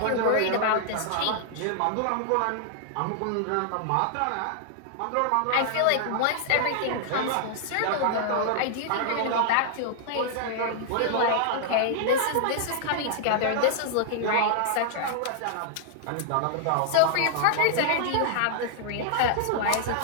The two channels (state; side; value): different; both; correlation -0.01